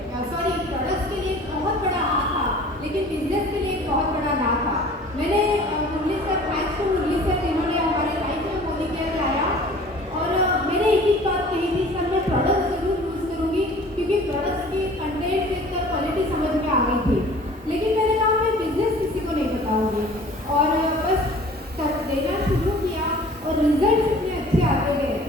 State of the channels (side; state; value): both; normal; correlation 0.47